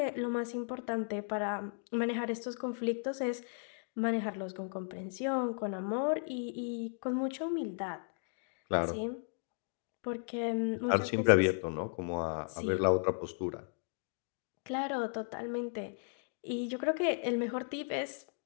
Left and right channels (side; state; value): right; silent; 54 dB below the other